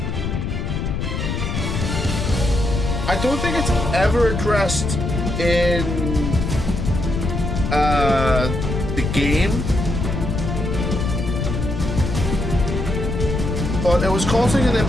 I don't think it's ever addressed in the game, but it was causing an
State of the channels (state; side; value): noise; left; rumble, 2 dB below the sound